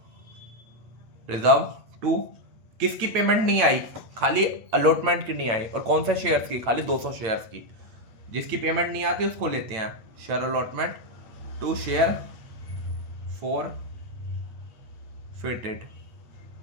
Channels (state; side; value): late; left; 8.8 ms